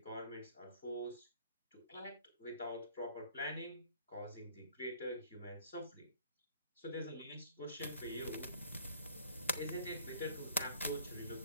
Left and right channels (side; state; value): both; inverted; correlation -0.54